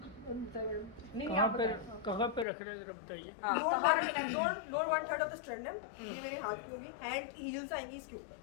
नहीं कहाँ आप पे बताएं। कहाँ पे रख रहे हैं जरा बताइए। हाँ, लोअर 1/3 ऑफ द स्टर्नम, ये मेरे हाथ की होगी, हैंड हील्स आएंगी इसके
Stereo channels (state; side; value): drops out; right; at 2.5 s